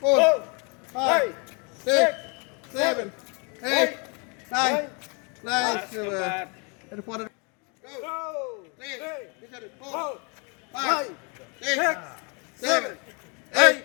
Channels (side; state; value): right; quieter; 33.8 dB